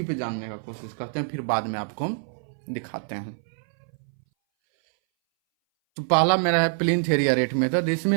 पे जानने का कोशिश करते हैं, फिर बाद में आपको दिखाते हैं। तो पहला मेरा है प्लिंथ एरिया रेट मेथड। इसमें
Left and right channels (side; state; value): left; silent; 59 dB below the other